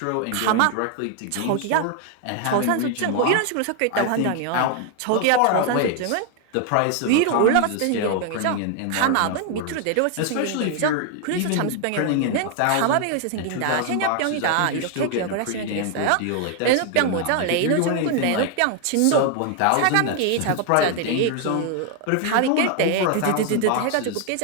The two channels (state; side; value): different; both; correlation 0.00